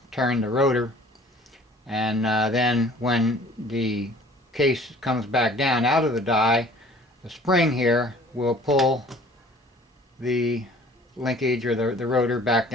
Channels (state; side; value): normal; both; correlation 0.51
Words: turn the rotor. And then when the case comes back down out of the die, the spring here will pull the linkage or the rotor back